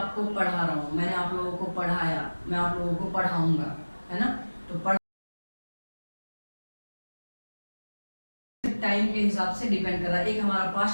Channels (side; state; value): both; inverted; correlation -1.00